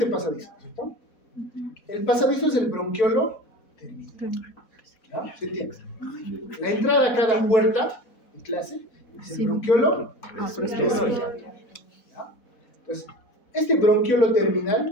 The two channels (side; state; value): right; late; 4.1 ms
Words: pasadizo, ¿cierto? El pasadizo es el bronquiolo terminal. ¿Ya? ¿Se entiende? La entrada a cada puerta de clase es el bronquiolo terminal. Entonces, este bronquiolo